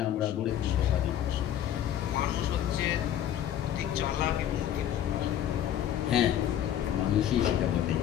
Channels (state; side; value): quieter; right; 10.7 dB